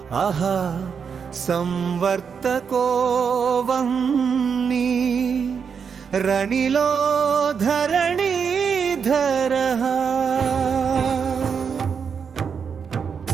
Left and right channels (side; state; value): left; quieter; 6.5 dB